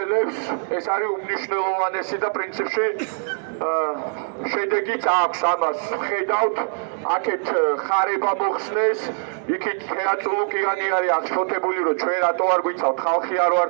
ეს არის უმნიშვნელოვანესი და პრინციპში შედეგიც აქვს ამას. ხედავთ, აქეთ ხარება მოხსნეს, იქით თეატრულუკიანი არის აღშფოთებული, რომ ჩვენ რატო არ გვიცავთ, ხალხი არ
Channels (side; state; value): left; silent; digital silence